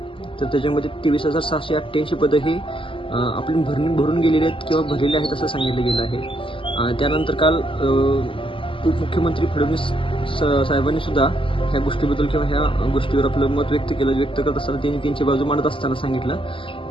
तर त्याच्यामध्ये 23,688 पदं ही आपली भरून गेलेली आहेत किंवा भरलेली आहेत असं सांगितलं गेलं आहे. त्यानंतर काल उपमुख्यमंत्री फडणवीस साहेबांनी सुद्धा ह्या गोष्टीबद्दल किंवा ह्या गोष्टीवर आपलं मत व्यक्त करत असताना त्यांनी त्यांची बाजू मांडत असताना सांगितलं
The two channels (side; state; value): right; late; 0.25 ms